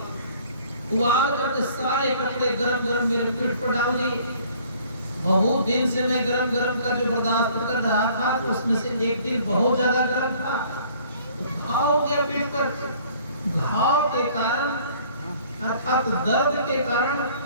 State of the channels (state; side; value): inverted; both; correlation -0.56